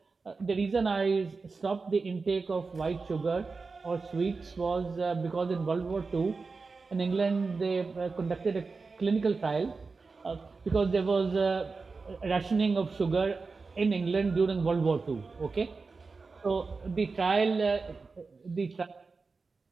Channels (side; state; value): left; quieter; 4.3 dB